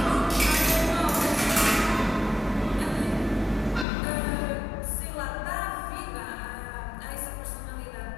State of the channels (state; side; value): drops out; right; at 3.9 s